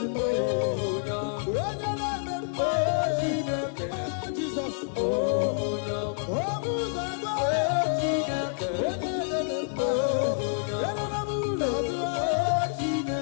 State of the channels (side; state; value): right; silent; 59 dB below the other